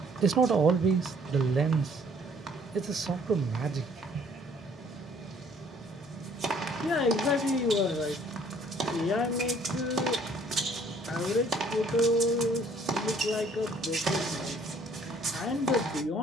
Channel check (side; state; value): both; normal; correlation 0.60